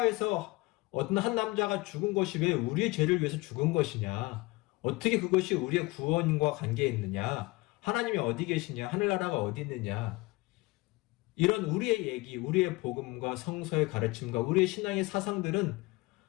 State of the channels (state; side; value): quieter; right; 22.9 dB